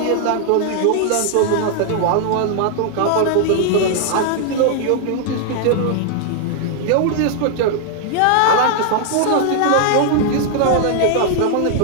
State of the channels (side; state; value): both; different; correlation 0.00